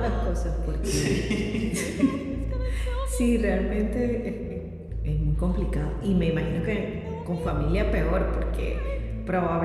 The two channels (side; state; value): both; identical; correlation 1.00